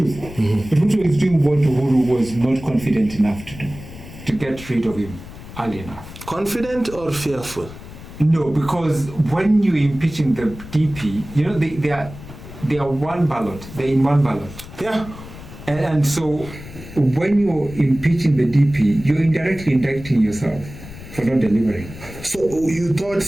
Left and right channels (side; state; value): left; noise; rumble, 15 dB below the sound